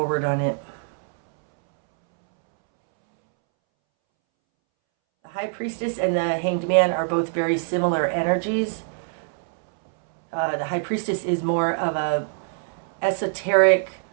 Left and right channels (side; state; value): left; silent; 63 dB below the other